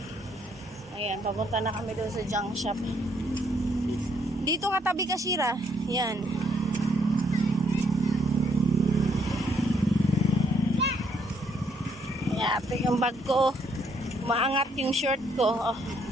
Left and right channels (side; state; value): both; normal; correlation 0.70